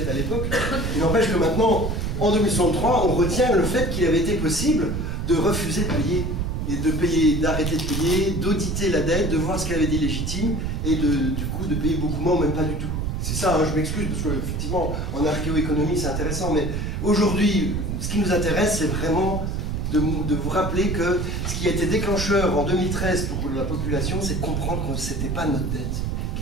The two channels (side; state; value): right; noise; rumble, 2 dB below the sound